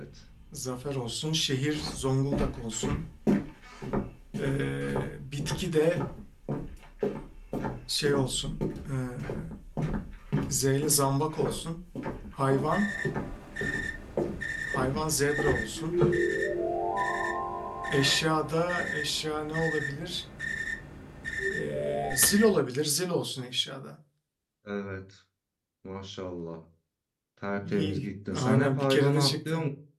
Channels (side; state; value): both; identical; correlation 1.00